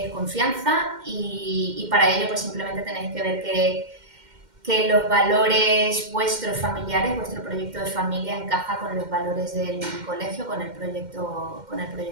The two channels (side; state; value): left; late; 2.1 ms